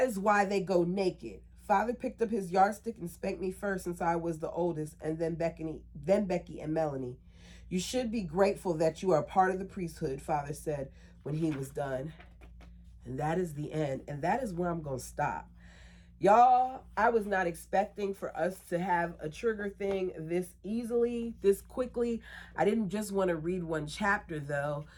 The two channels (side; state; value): both; identical; correlation 1.00